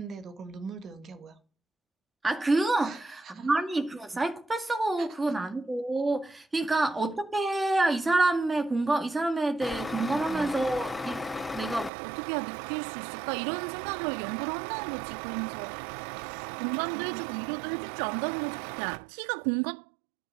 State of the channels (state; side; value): drops out; left; at 11.9 s